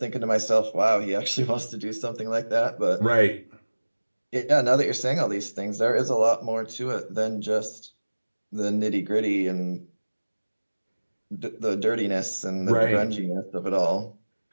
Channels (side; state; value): both; inverted; correlation -1.00